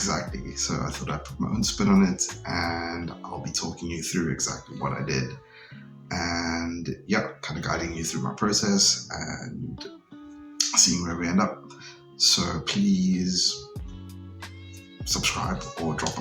so I thought I'd put my own spin on it, and I'll be talking you through exactly what I did, and yeah, kind of guiding you through my process and seeing where we end up. So please subscribe or drop a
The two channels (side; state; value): both; identical; correlation 1.00